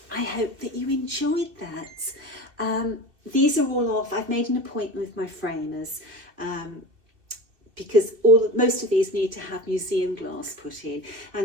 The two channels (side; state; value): left; late; 2.7 ms